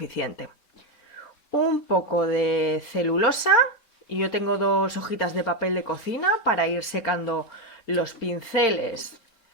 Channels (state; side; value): late; right; 4.3 ms